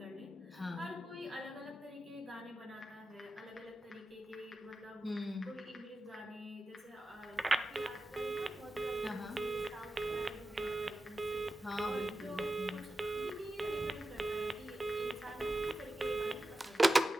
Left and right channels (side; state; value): both; normal; correlation 0.92